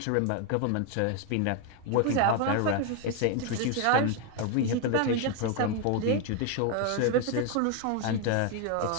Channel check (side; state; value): both; different; correlation 0.01